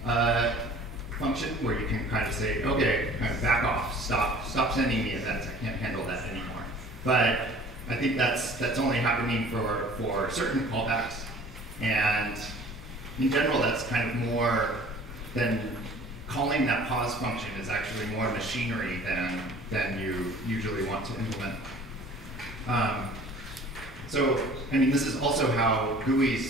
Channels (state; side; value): normal; both; correlation 0.48